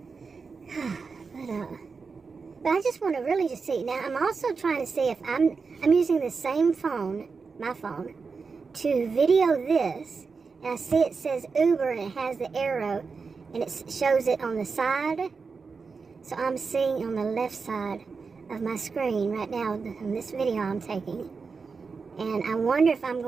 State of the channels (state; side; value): quieter; left; 4.9 dB